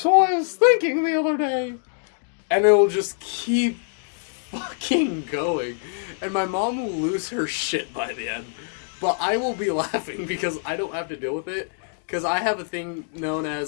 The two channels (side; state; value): right; silent; 62 dB below the other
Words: I was thinking the other day... And it'll just keep fucking going. And my mom will lose her shit by the end. But I will be laughing because I don't have to deal with it. Because I have a thing known